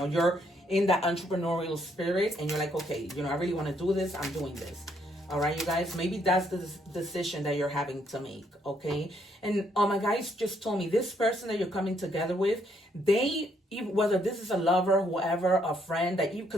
you're in that entrepreneurial spirit and you're like, okay, I really want to do this. I'm doing this. All right, you guys, maybe that's the decision that you're having to make. Okay. And my guys just told me this person that you're coming together with, whether this is a lover, whoever, a friend,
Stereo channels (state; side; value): normal; both; correlation 0.71